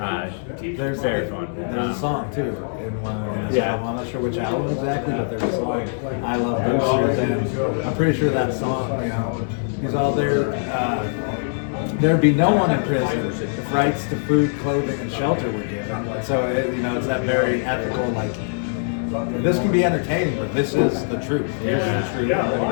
very fun. There's a song too in one of his Yeah. album. I'm not sure which album exactly, but there's a song, I Love Boosters, and I'm pretty sure that song, he's all there. There'd be no one in prison if rights to food, clothing, and shelter were given. So it's that very ethical, like, this can be entertaining, but this is the truth. Here's the truth. I'm going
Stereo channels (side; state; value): right; silent; digital silence